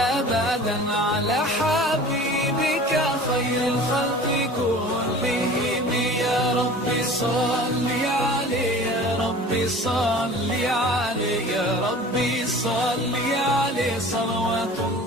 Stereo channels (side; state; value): both; normal; correlation 0.42